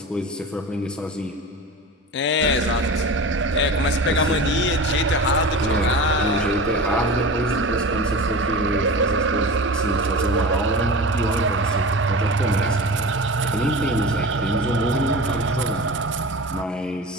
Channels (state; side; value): normal; both; correlation 0.32